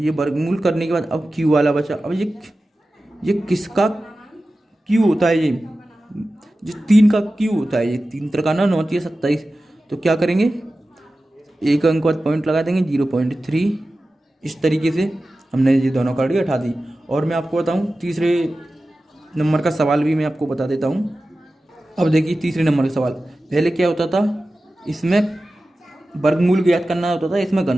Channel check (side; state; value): both; normal; correlation 0.95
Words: वर्गमूल करने के बाद अब क्यू वाला बचा। अब ये किसका क्यू होता है, ये 3 का क्यू होता है, ये 3 3 9 3 27। तो क्या करेंगे, 1 अंक बाद पॉइंट लगा देंगे 0.3। इस तरीके से हमने ये दोनों करड़ी उठा दी। और मैं आपको बताऊं तीसरे नंबर का सवाल भी मैं आपको बता देता हूं। अब देखिए तीसरे नंबर का सवाल, पहले क्या होता था, इसमें वर्गमूल ज्ञात करना होता था, इसमें